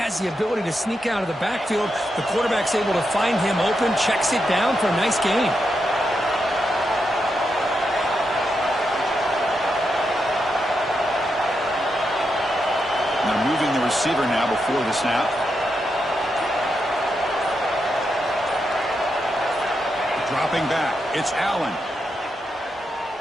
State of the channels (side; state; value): both; normal; correlation 0.84